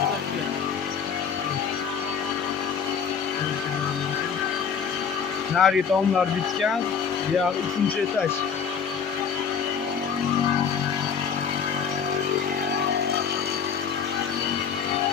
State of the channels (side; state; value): right; quieter; 6.7 dB